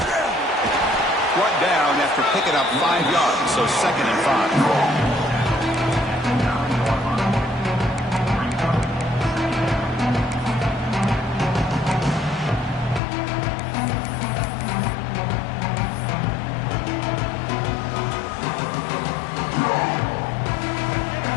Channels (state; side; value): drops out; right; at 13.0 s